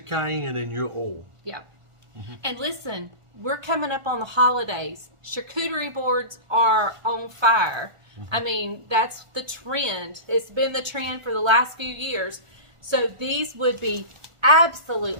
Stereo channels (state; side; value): late; left; 1.4 ms